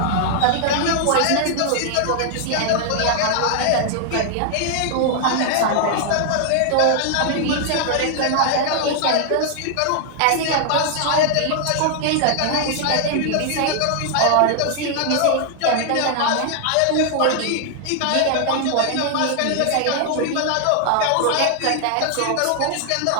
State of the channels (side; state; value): both; different; correlation 0.00